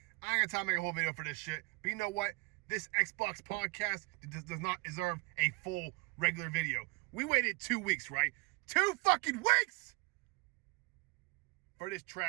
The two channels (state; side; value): quieter; left; 27.6 dB